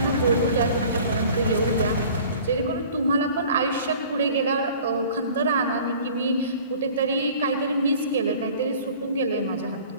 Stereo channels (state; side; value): inverted; both; correlation -0.47